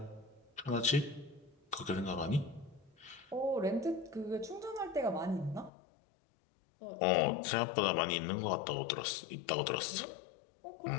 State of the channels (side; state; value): right; drops out; at 5.7 s